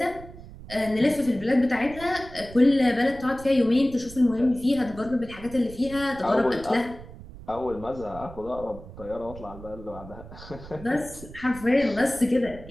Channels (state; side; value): noise; right; rumble, 16 dB below the sound